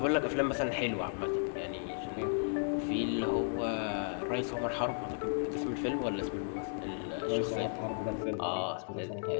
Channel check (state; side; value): silent; right; digital silence